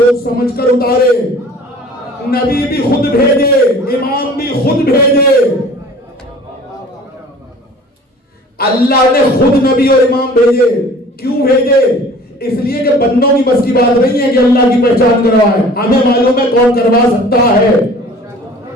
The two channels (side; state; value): both; normal; correlation 0.47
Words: سمجھ کر اتارے، نبی بھی خود بھیجے، امام بھی خود بھیجے۔ اللہ نے خود نبی اور امام بھیجے، کیوں بھیجے؟ اس لیے کہ بندوں کی بس کی بات نہیں ہے کہ اللہ کی پہچان کروائے، ہمیں معلوم ہے کون کروا سکتا ہے،